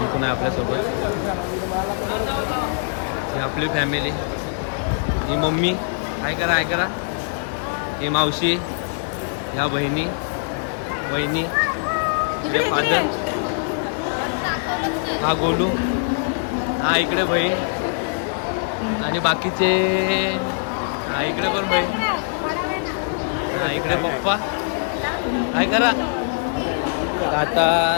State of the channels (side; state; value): right; silent; digital silence